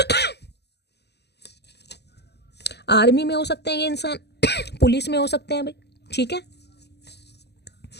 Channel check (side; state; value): right; late; 0.49 ms